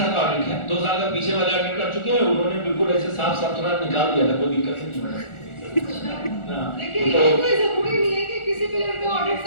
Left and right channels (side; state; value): right; late; 1.4 ms